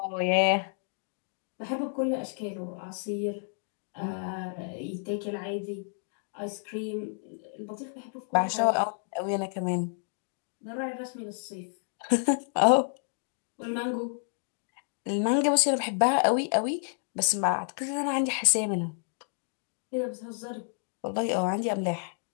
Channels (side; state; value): right; silent; digital silence